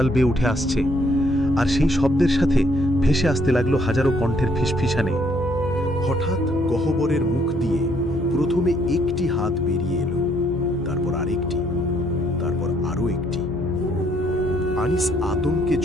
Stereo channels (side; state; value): both; normal; correlation 0.68